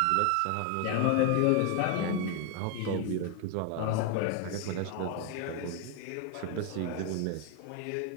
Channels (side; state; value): both; different; correlation 0.00